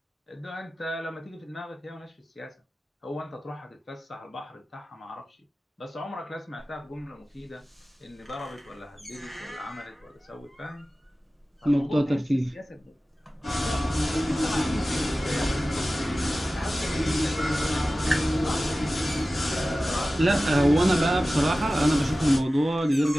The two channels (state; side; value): normal; both; correlation 0.96